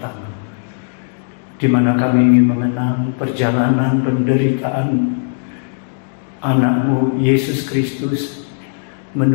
di mana kami ingin mengenang perjalanan penderitaan anak-Mu Yesus Kristus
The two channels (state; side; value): silent; right; digital silence